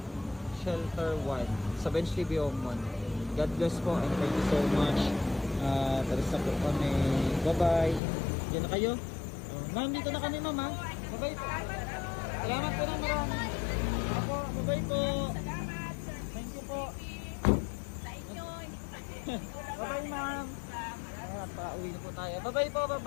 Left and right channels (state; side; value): drops out; right; at 8.0 s